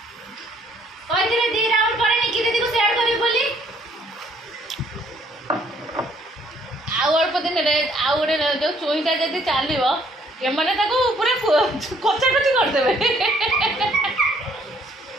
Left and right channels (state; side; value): normal; both; correlation 0.64